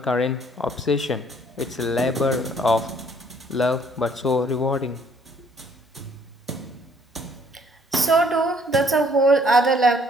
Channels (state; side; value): normal; both; correlation 0.62